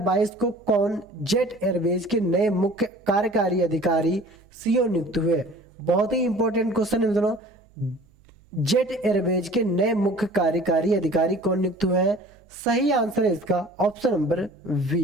को कौन जेट एयरवेज के नए मुख्य कार्यकारी अधिकारी CEO नियुक्त हुए? बहुत ही इंपॉर्टेंट क्वेश्चन है मित्रों। जेट एयरवेज के नए मुख्य कार्यकारी अधिकारी कौन नियुक्त हुए हैं? सही आंसर है इसका option number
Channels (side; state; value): right; noise; hum, 30 dB below the sound